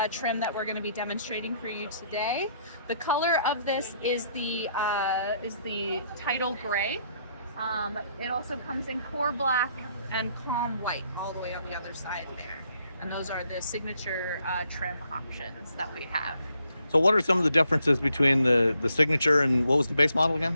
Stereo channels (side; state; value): both; inverted; correlation -0.71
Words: trim that we're going to be demonstrating for you today. The color of this is the Title Gray. It also comes in Core Black and Calm White all the way on the other side there. And those are the Signature trim options that we have. So what are some of the differences between the Signature and what was the base model again?